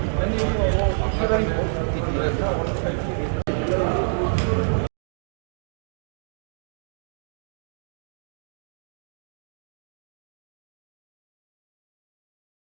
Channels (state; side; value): silent; left; digital silence